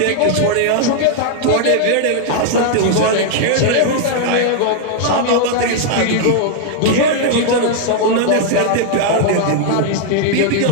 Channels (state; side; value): different; both; correlation -0.01